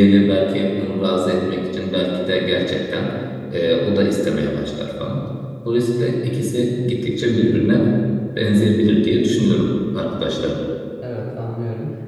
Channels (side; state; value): both; identical; correlation 1.00